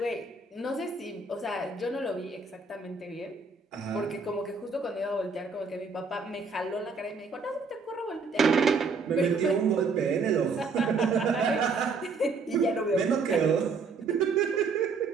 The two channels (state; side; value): quieter; left; 4.4 dB